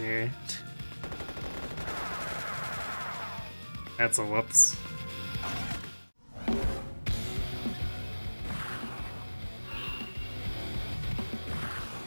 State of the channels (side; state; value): both; inverted; correlation -1.00